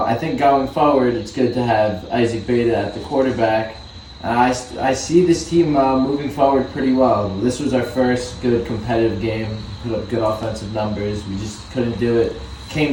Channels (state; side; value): identical; both; correlation 1.00